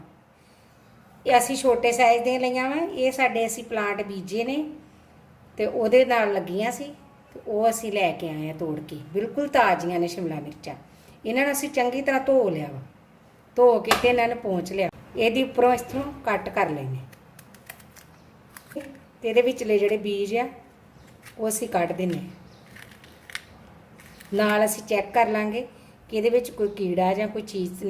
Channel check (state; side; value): identical; both; correlation 1.00